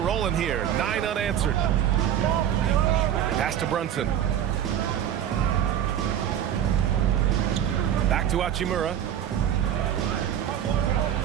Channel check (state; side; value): quieter; left; 10.1 dB